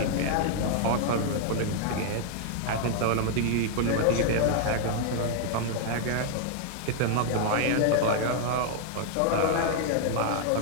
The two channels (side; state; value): both; different; correlation -0.01